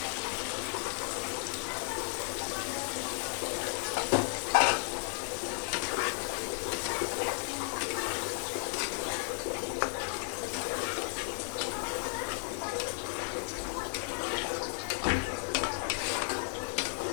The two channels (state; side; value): silent; right; 55 dB below the other